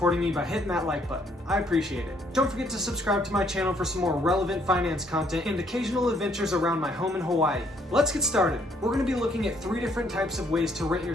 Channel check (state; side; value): normal; both; correlation 0.67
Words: me by hitting that like button. I appreciate it. Don't forget to subscribe to my channel for some more relevant finance content and occasional adventures around my home in Hawaii. Let's get started. We're going to be looking at 3 different types of ways to rent your